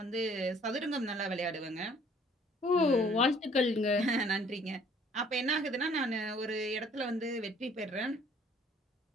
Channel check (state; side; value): normal; both; correlation 0.58